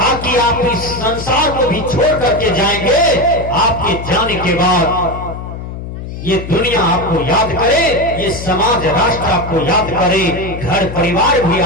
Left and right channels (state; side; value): noise; left; hum, 9 dB below the sound